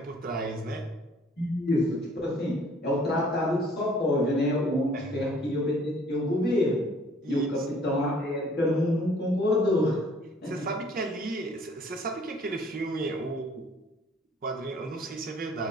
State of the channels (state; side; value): normal; both; correlation 0.57